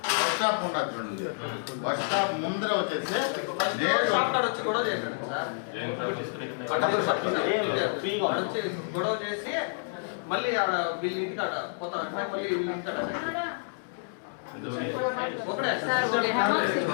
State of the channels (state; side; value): silent; right; digital silence